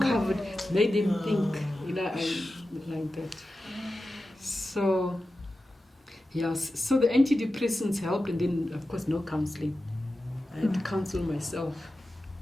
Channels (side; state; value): both; normal; correlation 0.93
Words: covered, made them think, I like that. So, yes. So the antidepressants helped, and then of course no counselling. I had to counsel myself.